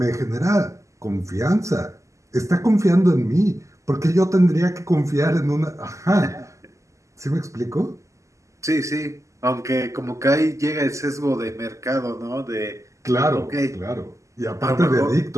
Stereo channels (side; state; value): left; late; 0.15 ms